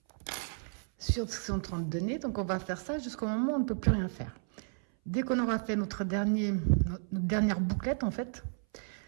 sur ce qu'ils sont en train de donner. Donc on va faire ça jusqu'au moment où on ne peut plus rien faire. Dès qu'on aura fait notre dernière bouclette, en fait,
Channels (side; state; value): left; silent; 56 dB below the other